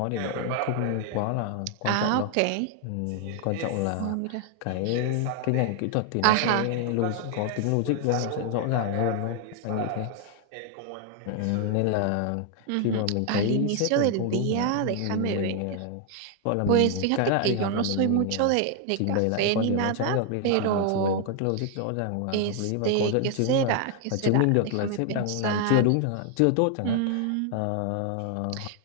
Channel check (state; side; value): different; both; correlation 0.00